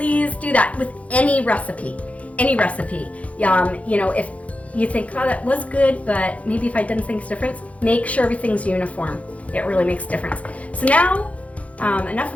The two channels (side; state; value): right; late; 0.065 ms